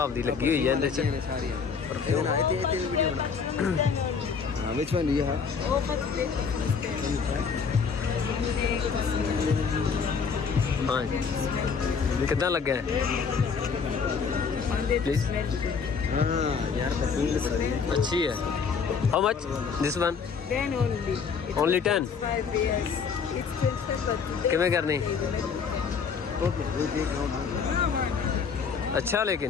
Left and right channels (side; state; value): right; quieter; 5.8 dB